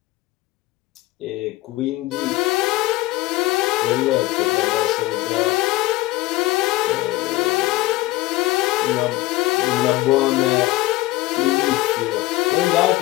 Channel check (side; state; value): right; quieter; 18.0 dB